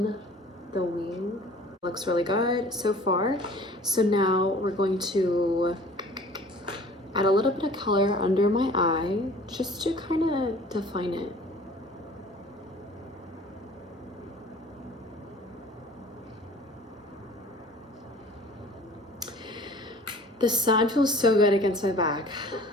the wing. Looks really good so far. So now we're going to add a little bit of color under my eye, just to kind of define it. The sun feels so good against my back.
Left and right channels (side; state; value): both; normal; correlation 0.47